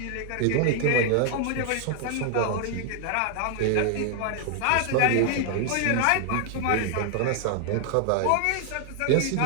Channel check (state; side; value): different; both; correlation 0.00